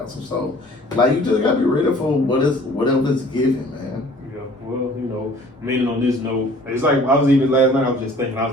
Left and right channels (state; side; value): normal; both; correlation 0.52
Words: So, you just got to be ready for whatever it's given, man. Yeah, well, meaning on this note, it's like I was even last night, I was just thinking, I